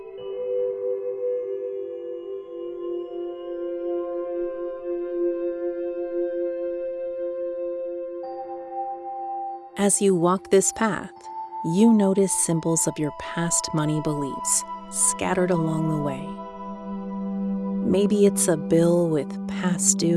As you walk this path, you notice symbols of your past money beliefs scattered along the way. Maybe it's a bill with past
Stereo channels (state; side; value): identical; both; correlation 1.00